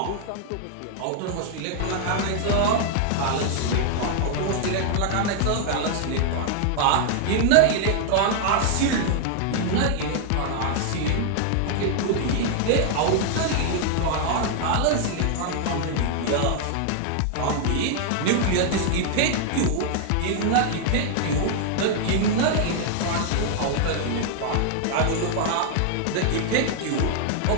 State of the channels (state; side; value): different; both; correlation 0.00